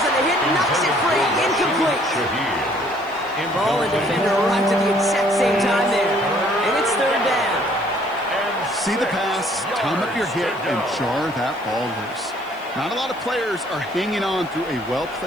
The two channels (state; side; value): noise; right; hiss, 27 dB below the sound